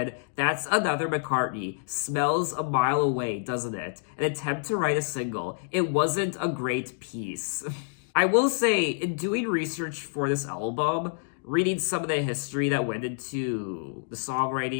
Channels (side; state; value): right; silent; digital silence